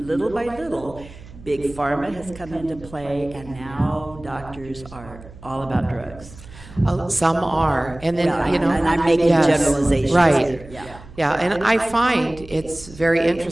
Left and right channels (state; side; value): noise; right; hum, 19 dB below the sound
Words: little by little, Big Pharma has come into play, and now doctors are all about drugs. Some are, and then and I'm making generalizations. Right. Yeah, and I find it's very